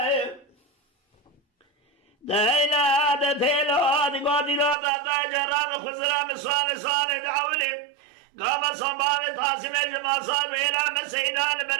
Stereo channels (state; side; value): drops out; left; at 4.8 s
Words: دايلا دتيلو هذه قادي لا دا جرام خزرام صالح دعولي قام صباب تاسم جما صاب إلى مسيدان